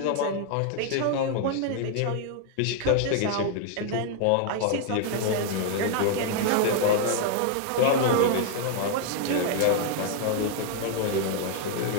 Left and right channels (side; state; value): both; different; correlation 0.00